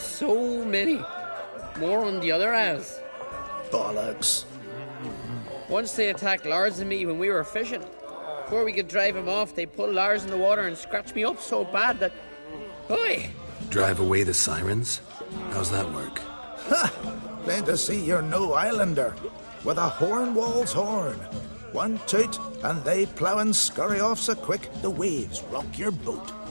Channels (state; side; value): inverted; both; correlation -1.00